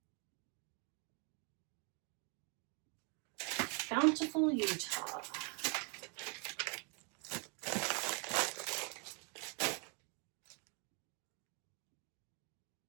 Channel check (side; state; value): left; quieter; 36.2 dB